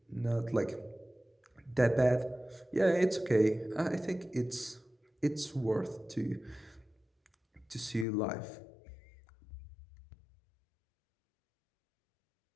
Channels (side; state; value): right; drops out; at 8.1 s